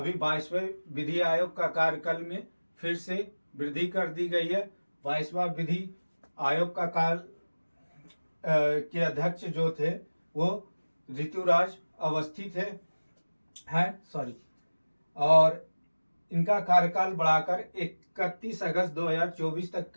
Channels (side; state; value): both; inverted; correlation -1.00